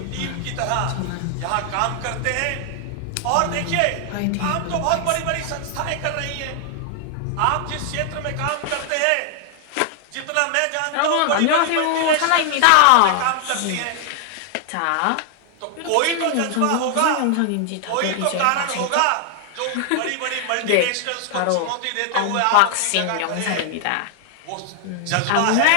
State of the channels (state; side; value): different; both; correlation 0.00